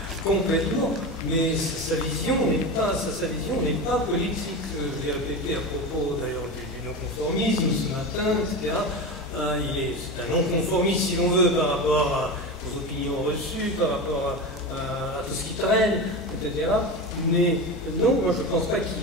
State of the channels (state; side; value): normal; both; correlation 0.24